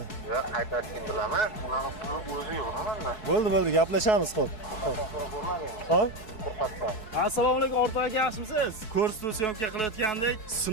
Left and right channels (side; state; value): right; late; 4.7 ms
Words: Yo'q, qaytarishni bilaman. Unaqa pul o'zi yo'q manda. Bo'ldi, gaplashamiz, xo'p. Xo'p. Assalomu alaykum, o'rtoq aka, yaxshimisiz? Ko'rsatuv syomka qilayotgandik,